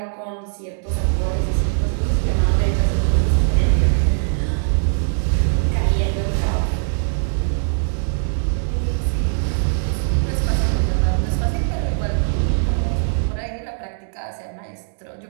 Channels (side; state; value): left; silent; digital silence